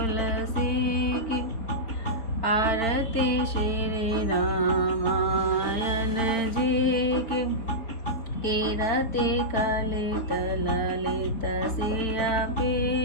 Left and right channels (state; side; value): late; right; 4.5 ms